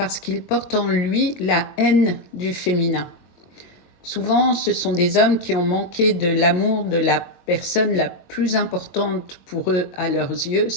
qu'il porte en lui la haine du féminin. Souvent, ce sont des hommes qui ont manqué de l'amour de la personne la plus importante pour eux à leurs yeux,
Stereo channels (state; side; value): late; right; 22 ms